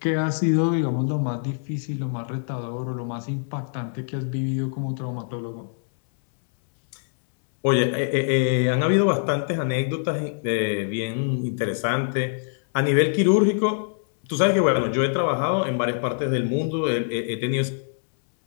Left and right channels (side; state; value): right; silent; 63 dB below the other